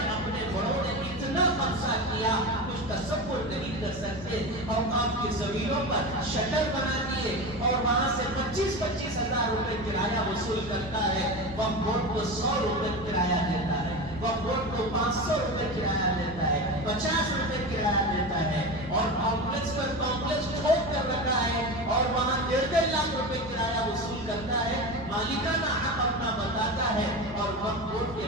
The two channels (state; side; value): normal; both; correlation 0.24